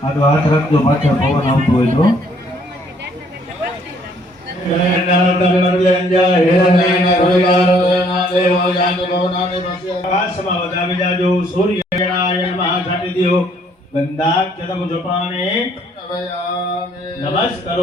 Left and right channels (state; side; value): normal; both; correlation 0.64